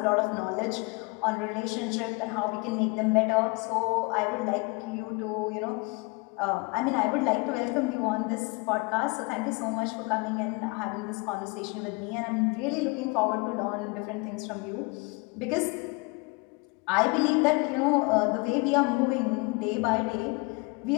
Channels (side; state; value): right; quieter; 28.5 dB